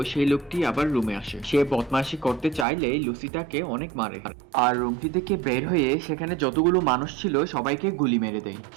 সেই লোকটি আবার রুমে আসে। সে বদমাশি করতে চাইলে লুসি তাকে অনেক মারে, আর রুমটি থেকে বের হয়ে সেখানে যতগুলো মানুষ ছিল সবাইকে গুলি মেরে দেয়।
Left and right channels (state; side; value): drops out; left; at 2.7 s